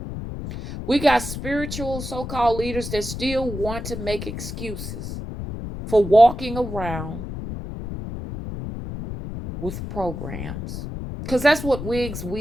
We got spiritual so-called leaders that still want to make excuses for walking around with programs. Because that's what wigs,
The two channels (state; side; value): noise; left; rumble, 7 dB below the sound